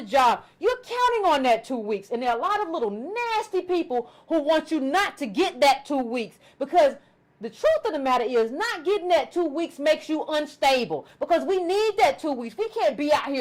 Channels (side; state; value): both; identical; correlation 1.00